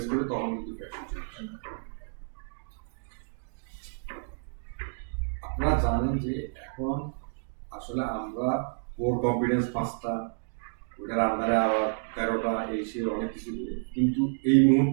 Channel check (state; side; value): silent; left; digital silence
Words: করে তখন কিন্তু ফ্র্যাকশন চলে আসে। আপনারা জানেন যে এখন আসলে আমরা কোর কম্পিটেন্স 5টা, ওটার আন্ডারে আবার 13টা, এই সে অনেক কিছু করে, কিন্তু এই